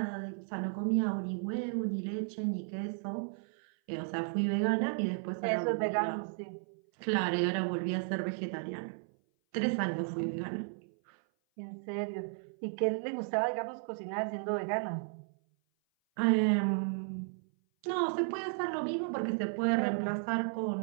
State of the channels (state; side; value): silent; left; 55 dB below the other